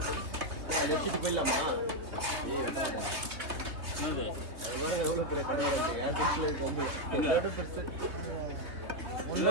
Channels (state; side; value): late; left; 3.3 ms